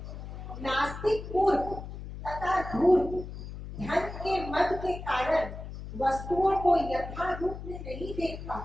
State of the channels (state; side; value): noise; left; hum, 10 dB below the sound